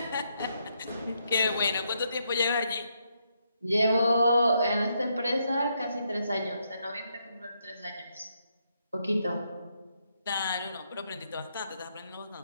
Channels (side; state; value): both; inverted; correlation -0.78